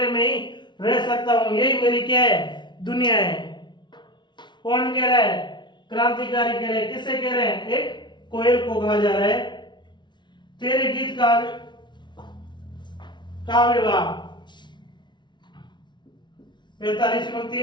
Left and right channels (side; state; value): right; late; 0.22 ms